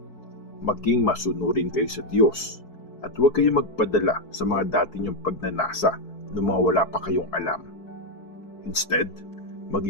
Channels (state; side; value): late; right; 4.6 ms